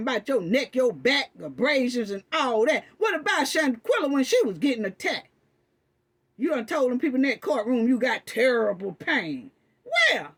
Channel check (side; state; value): both; identical; correlation 1.00